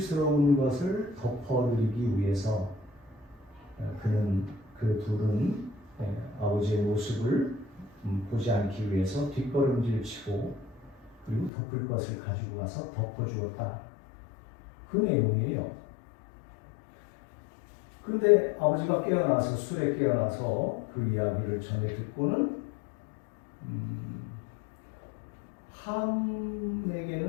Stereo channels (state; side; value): drops out; right; at 11.5 s